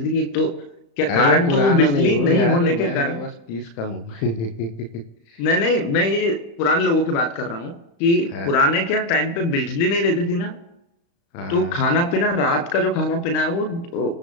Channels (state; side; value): late; right; 35 ms